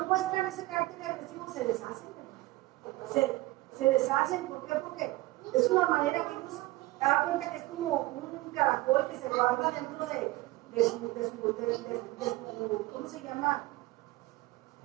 muestran ese carácter agresivo, se deshacen. Se deshacen. ¿Por qué? Porque es una manera que ellos se dan cuenta que es como un caracol que se guarda dentro de su ¿cómo se llama?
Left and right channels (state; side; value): quieter; left; 19.5 dB